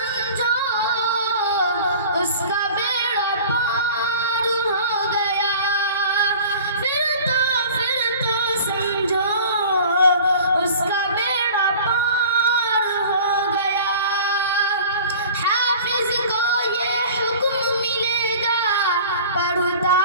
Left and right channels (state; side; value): inverted; both; correlation -0.43